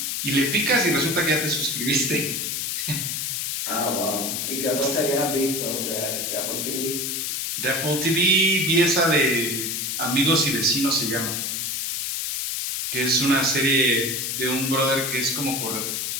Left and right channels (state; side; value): noise; left; hiss, 2 dB below the sound